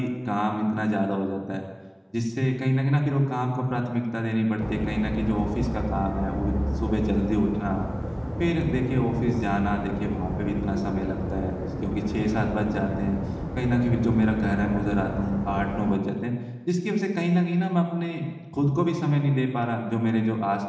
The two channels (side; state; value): both; identical; correlation 1.00